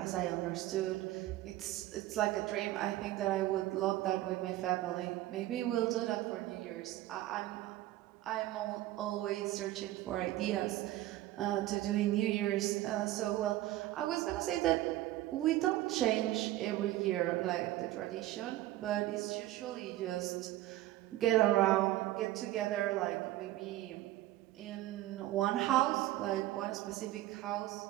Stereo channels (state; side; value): quieter; left; 15.6 dB